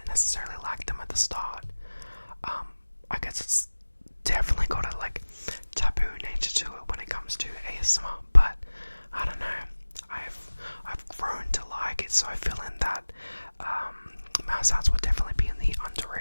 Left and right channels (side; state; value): both; inverted; correlation -1.00